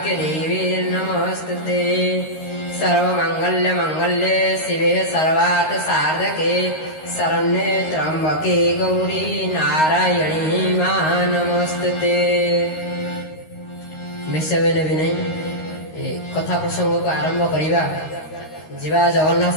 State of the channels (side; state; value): right; late; 13 ms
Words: नमस्तुते। सर्वमंगल्य मंगल्ये शिवे सर्वार्थ साधके शरण्ये त्र्यंबके गौरी नारायणी मा नमस्तुते। मिशवेने भी नहीं कथा प्रसंग को आरंभ करिबा जीवा